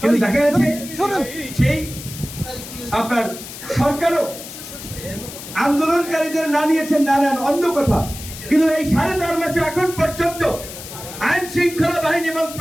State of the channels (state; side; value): noise; left; hiss, 12 dB below the sound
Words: দেখা যাচ্ছে সেই আপনার সরকারও আন্দোলনকারীদের না নিয়েছেন, না নেন অন্য কথা, কিন্তু এই 4.5 মাসে এখন পর্যন্ত আইন শৃঙ্খলা বাহিনী এবং